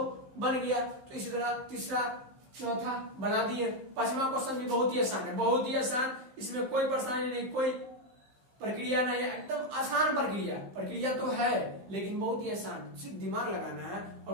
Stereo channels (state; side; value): late; left; 15 ms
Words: बन गया। तो इसी तरह तीसरा चौथा बना दिए। पांचवा क्वेश्चन भी बहुत ही आसान है, बहुत ही आसान, इसमें कोई परेशानी नहीं, कोई प्रक्रिया नहीं है, एकदम आसान प्रक्रिया तो है लेकिन बहुत ही आसान, सिर्फ दिमाग लगाना है